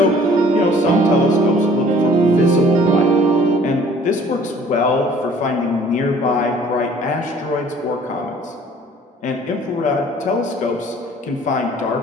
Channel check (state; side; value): normal; both; correlation 0.54